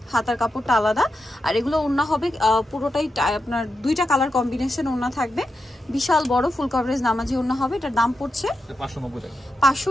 হাতার কাপড়টা আলাদা। আর এগুলো ওড়না হবে পুরোটাই আপনার দুইটা কালার কম্বিনেশন ওড়না থাকবে, বিশাল বড় ফুল কভারেজ নামাজি ওড়না হবে। এটার দাম পড়ছে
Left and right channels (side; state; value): both; normal; correlation 0.88